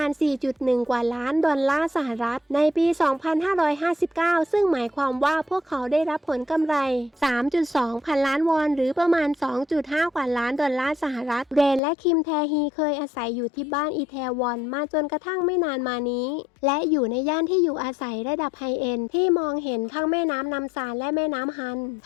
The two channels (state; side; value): drops out; right; at 11.8 s